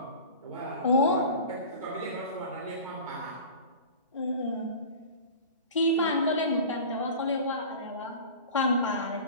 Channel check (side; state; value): both; inverted; correlation -0.37